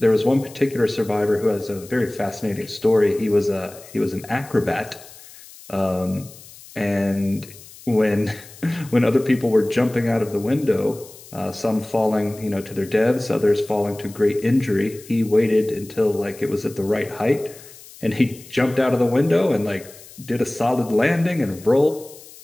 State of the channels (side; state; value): left; noise; hiss, 20 dB below the sound